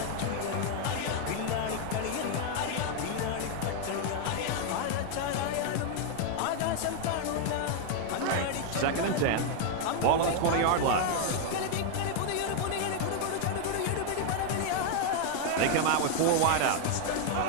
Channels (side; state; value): both; different; correlation 0.00